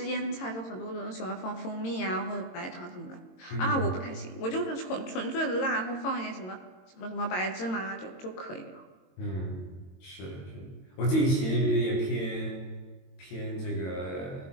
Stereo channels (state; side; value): late; right; 22 ms